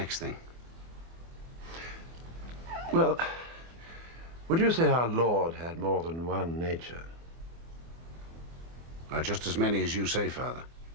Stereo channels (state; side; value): late; left; 24 ms